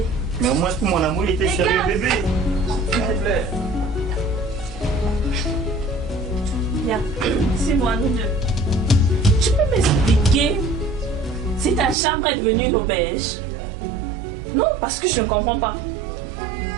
Mais au moins pour mon amour, il était sérieux, bébé. S'il te plaît. Viens, c'est moi, nous deux. Tu peux m'expliquer si ta chambre est devenue une auberge? Non, parce que je ne comprends pas.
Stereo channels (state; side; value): drops out; left; at 12.0 s